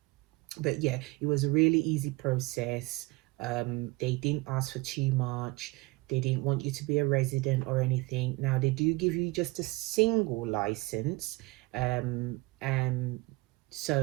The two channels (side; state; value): left; quieter; 22.4 dB